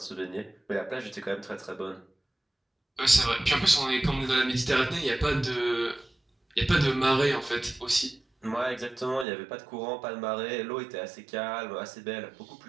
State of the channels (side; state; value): left; drops out; at 9.2 s